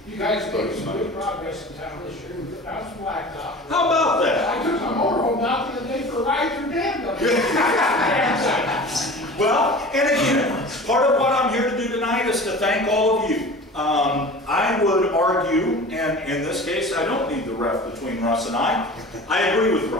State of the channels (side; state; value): both; normal; correlation 0.38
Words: You guys made some good progress in town this year. I was blacktop. How about that? I took my motorhome out the other day for a ride through Danville. Well, and again, part of what I'm here to do tonight is to thank all of you. I would argue, and in this case, I don't need the ref between Russ and I agree with